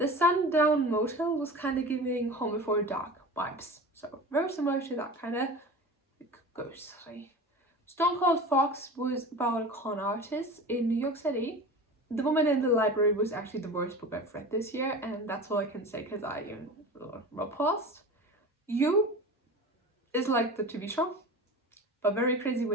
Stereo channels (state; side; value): normal; both; correlation 0.34